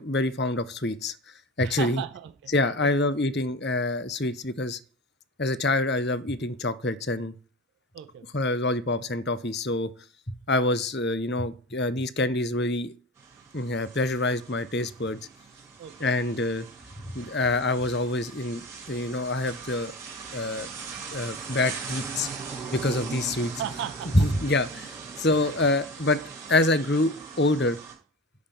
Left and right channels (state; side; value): normal; both; correlation 0.30